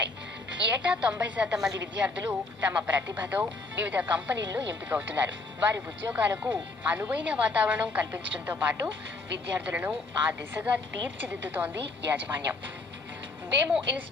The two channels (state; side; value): quieter; right; 3.5 dB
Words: ఏటా 90% మంది విద్యార్థులు తమ ప్రతిభతో వివిధ కంపెనీల్లో ఎంపికవుతున్నారు. వారి ఉద్యోగాలకు అనువైన వాతావరణం కల్పించడంతో పాటు విద్యార్థులను ఆ దిశగా తీర్చిదిద్దుతోంది యాజమాన్యం. Vemu